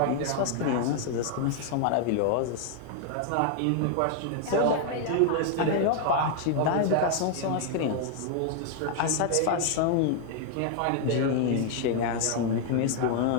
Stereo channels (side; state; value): both; different; correlation 0.00